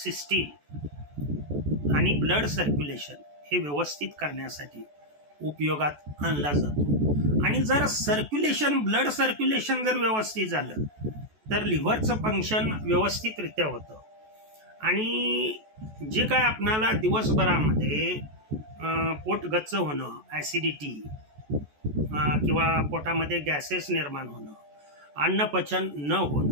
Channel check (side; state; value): left; late; 14 ms